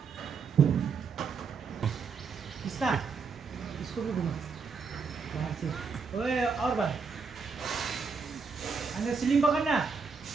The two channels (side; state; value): left; quieter; 5.2 dB